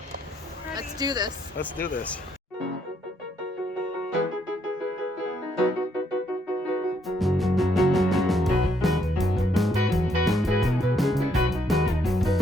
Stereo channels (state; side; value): normal; both; correlation 0.73